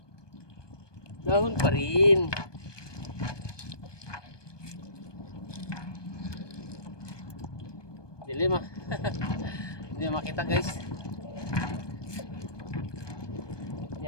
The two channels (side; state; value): right; late; 1.2 ms